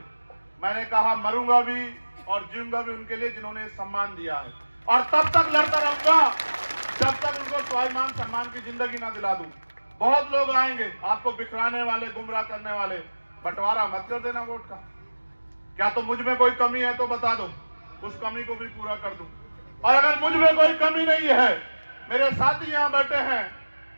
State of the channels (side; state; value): both; inverted; correlation -1.00